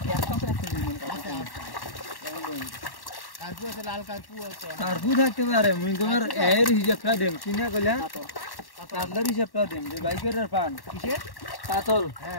একটা তো 1 কেজি ওজনের কাতল কারপু আছে লাল কারপু আছে কারপু থাকতে পারে মুই তোমার এর হিসাবটা দেম কিনা কইলা কাতলার হিসাবটা দেম যে বাইকের পান কিসে কাতল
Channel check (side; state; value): right; late; 1.1 ms